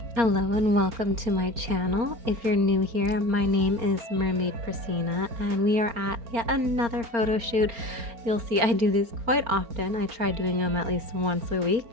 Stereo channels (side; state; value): left; late; 4.3 ms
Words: Hello and welcome to my channel. If you're new here, my name is Mermaid Prasina and we are at yet another photo shoot. You'll see I do these quite often. I try doing them at least once a week